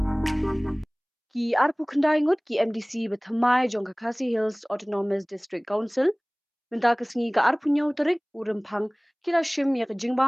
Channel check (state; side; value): identical; both; correlation 1.00